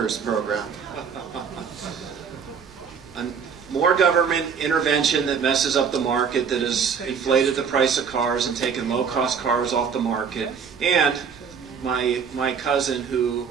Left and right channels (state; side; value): quieter; left; 6.5 dB